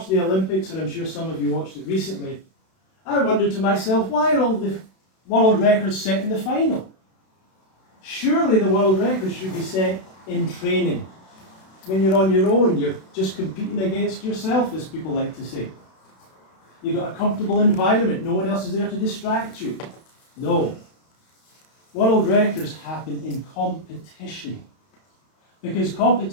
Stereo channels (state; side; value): late; right; 32 ms